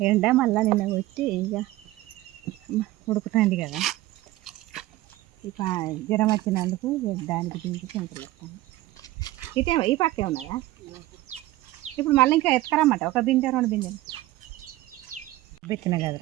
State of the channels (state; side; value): quieter; left; 17.0 dB